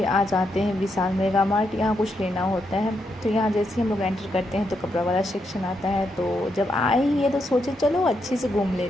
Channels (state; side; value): normal; both; correlation 0.81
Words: आ जाते हैं विशाल मेगा मार्ट। यहाँ कुछ लेना होता है, तो यहाँ जैसे ही हम लोग एंटर करते हैं तो कपड़ा वाला सेक्शन आता है। तो जब आए ही है तो सोचे चलो अच्छे से घूम